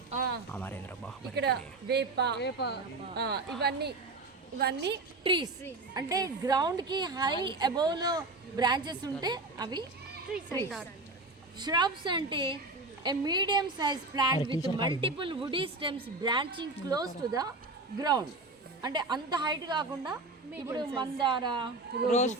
ఇక్కడ వేప, ఇవన్నీ ట్రీస్. అంటే గ్రౌండ్కి హై అబౌవ్లో బ్రాంచెస్ ఉంటే అవి ట్రీస్. shrubs అంటే a medium sized plant with multiple woody stems branching close to the ground. అంటే అంత హైట్ కాకుండా, ఇప్పుడు మందార, రోజ్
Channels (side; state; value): left; quieter; 3.1 dB